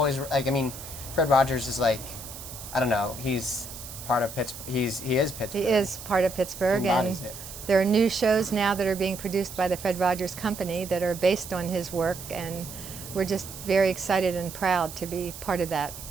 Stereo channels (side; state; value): right; noise; hiss, 12 dB below the sound